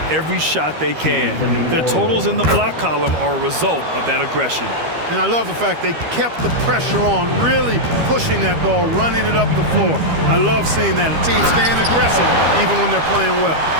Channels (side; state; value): left; late; 13 ms